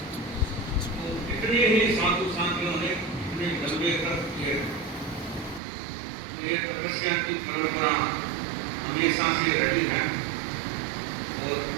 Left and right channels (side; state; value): left; drops out; at 5.6 s